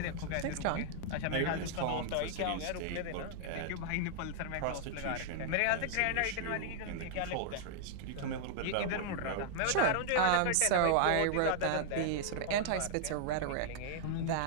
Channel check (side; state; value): both; different; correlation -0.01